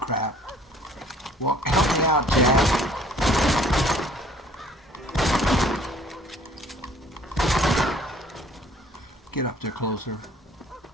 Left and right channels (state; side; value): normal; both; correlation 0.56